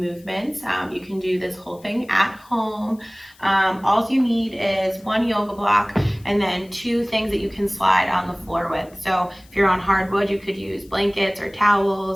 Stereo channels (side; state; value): left; noise; hiss, 27 dB below the sound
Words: You can do this whole thing at home. All you need is 1 yoga block and then 2 things that you can slide on the floor with. So if you're on hardwood, you could use blankets or